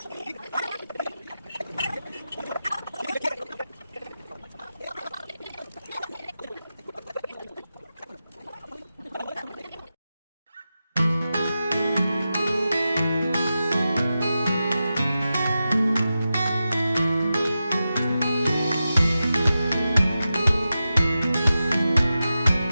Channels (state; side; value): inverted; both; correlation -0.92